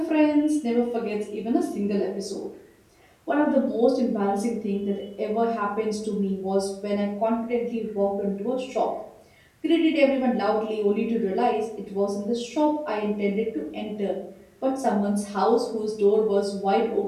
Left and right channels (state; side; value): identical; both; correlation 1.00